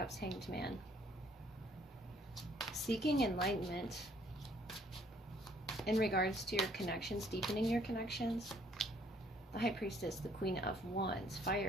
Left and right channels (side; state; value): both; normal; correlation 0.63